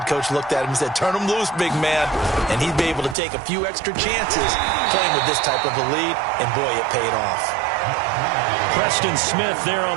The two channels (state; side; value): drops out; left; at 3.2 s